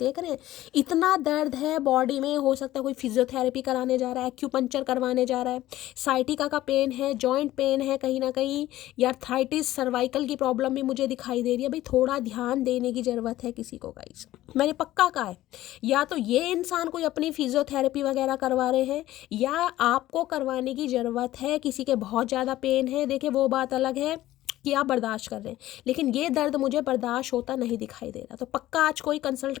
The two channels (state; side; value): quieter; right; 15.1 dB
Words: रहे हैं इतना दर्द है बॉडी में। हो सकता है कोई फिजियोथेरेपी कराने जा रहा है, एक्यूपंक्चर करवाने जा रहा है, साइटिका का पेन है, जॉइंट पेन है कहीं ना कहीं, या आर्थराइटिस, सर्वाइकल की प्रॉब्लम भी मुझे दिखाई दे रही है। भाई थोड़ा ध्यान देने की ज़रूरत है किसी को गाइस, मैंने पक्का कहा है। या तो ये इंसान कोई अपनी फिजियोथेरेपी वगैरह करवा रहे हैं, या आपको करवाने की ज़रूरत है। किसी के बहुत ज़्यादा पेन है, देखिए वो बात अलग है कि आप बर्दाश्त कर रहे हैं, लेकिन ये दर्द मुझे बर्दाश्त होता नहीं दिखाई दे रहा। तो पक्का आज कोई कंसल्ट